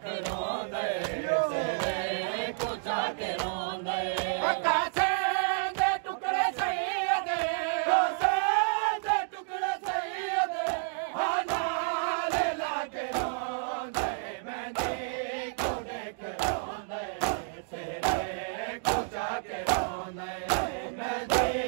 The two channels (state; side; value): silent; left; digital silence